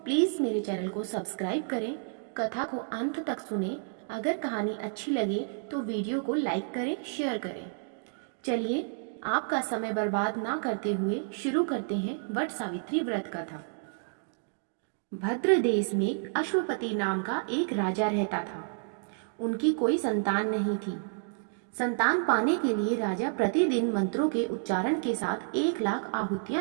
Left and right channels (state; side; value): silent; left; digital silence